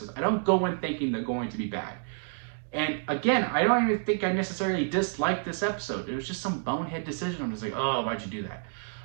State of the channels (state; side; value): silent; left; digital silence